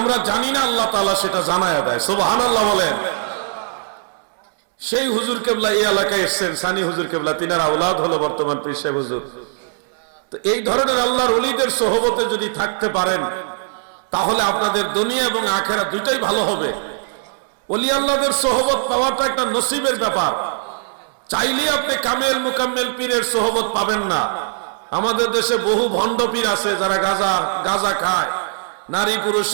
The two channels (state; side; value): silent; left; 66 dB below the other